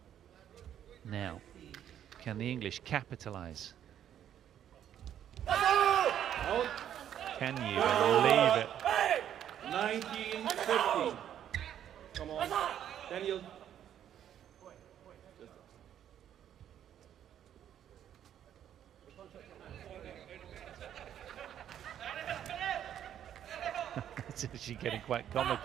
Now, can the English capitalise? Out. Can you believe it? 19-15. Come on, Daniel. It's actually getting quite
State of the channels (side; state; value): left; quieter; 10.2 dB